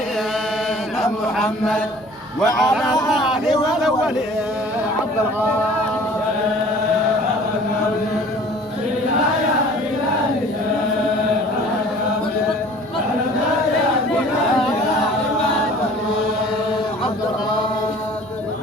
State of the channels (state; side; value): noise; left; hum, 29 dB below the sound